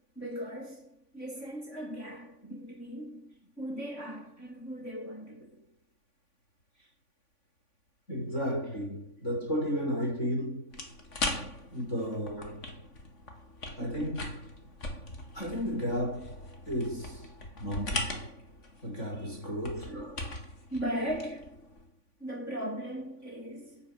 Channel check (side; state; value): right; late; 3.5 ms